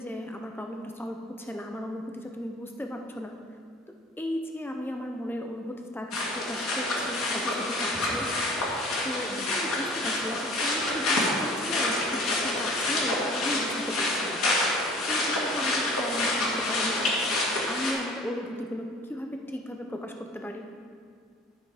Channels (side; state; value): both; normal; correlation 0.46